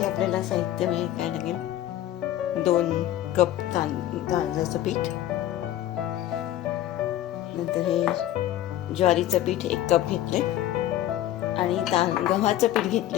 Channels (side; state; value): right; quieter; 13.0 dB